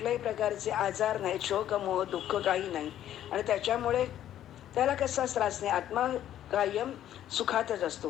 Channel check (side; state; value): right; quieter; 11.6 dB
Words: प्रकारचे आजार नाही, शोक मोह दुःख काही नाही. आणि त्याच्यामुळे त्याला कसाच त्रास नाही. आत्मा कायम सुखातच